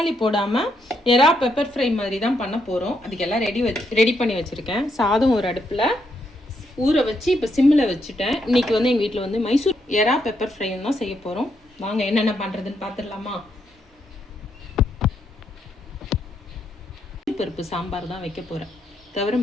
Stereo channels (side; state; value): both; normal; correlation 0.77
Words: போடாமல் எறா பெப்பர் ஃப்ரை மாதிரி தான் பண்ண போகிறோம். அதுக்கெல்லாம் ரெடி பண்ணி வச்சுருக்கேன். சாதம் ஒரு அடுப்பில் ஊற வச்சு இப்போ சிம்மில் வச்சுட்டேன். இன்றைக்கி வந்து எங்கள் வீட்டில் வந்து மைசூர் எறா பெப்பர் ஃப்ரைன்னு தான் செய்ய போகிறோம். வாங்க என்னென்ன பண்ணுறதுன்னு பார்த்துடலாமா. பருப்பு சாம்பார் தான் வைக்க போகிறேன்.